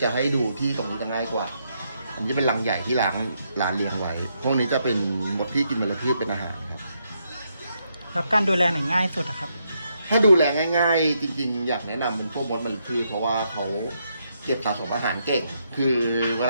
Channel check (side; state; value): both; inverted; correlation -0.78